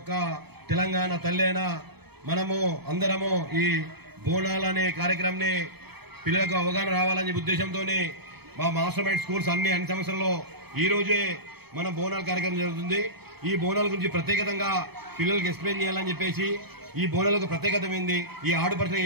తెలంగాణ తల్లి అయినా మనము అందరము ఈ బోనాలనే కార్యక్రమాన్ని పిల్లలకు అవగాహన రావాలనే ఉద్దేశంతోనే మా మాస్టర్ మైండ్ స్కూల్స్ అన్ని సంవత్సరంలో ఈ రోజే మన బోనాల కార్యక్రమం జరుగుతుంది. ఈ బోనాల గురించి ప్రత్యేకంగా పిల్లలకు ఎక్స్ప్లెయిన్ చేయాలని చెప్పేసి ఈ బోనాలకు ప్రత్యేకత ఏంది, ఈ ఆడుపడుతులు ఏ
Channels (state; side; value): late; left; 0.97 ms